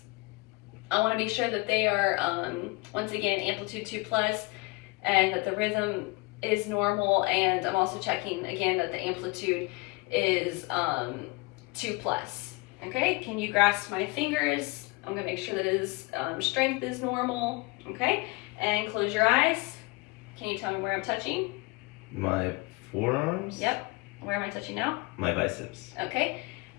I want to be sure that they are, once again, amplitude 2+, and that the rhythm is normal. And I'm also checking, again, that the amplitude is 2+. Okay, can you grasp my fingers? I'm going to make sure that his strength is normal. Okay, and close your eyes. Can you tell me where I'm touching? My forearms? Yep. Where am I touching now? My biceps. Okay.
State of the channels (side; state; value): right; quieter; 24.6 dB